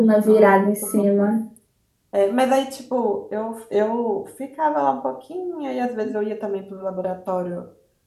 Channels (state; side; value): identical; both; correlation 1.00